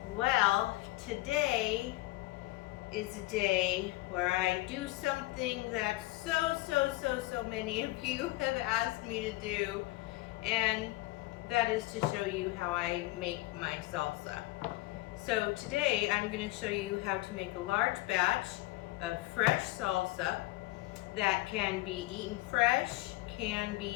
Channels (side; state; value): right; quieter; 19.5 dB